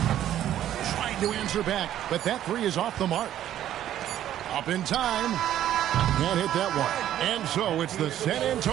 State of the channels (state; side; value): quieter; left; 11.8 dB